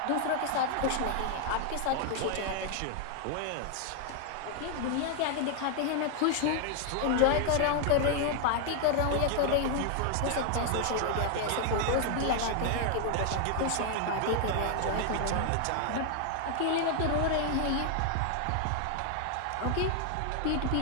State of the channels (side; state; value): both; different; correlation 0.00